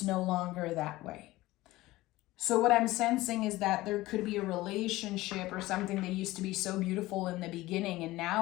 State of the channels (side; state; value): right; quieter; 18.2 dB